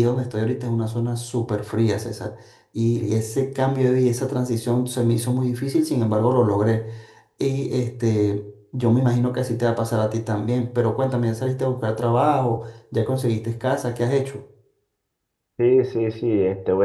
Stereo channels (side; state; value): both; identical; correlation 1.00